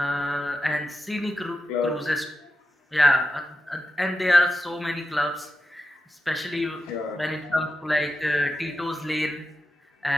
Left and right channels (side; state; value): both; normal; correlation 0.90